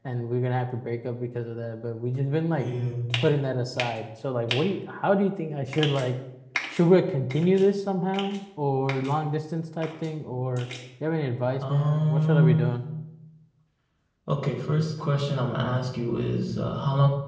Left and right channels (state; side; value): identical; both; correlation 1.00